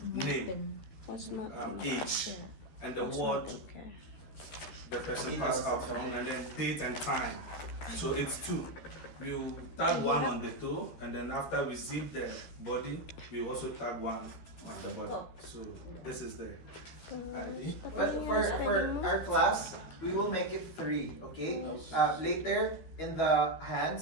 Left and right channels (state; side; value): late; right; 13 ms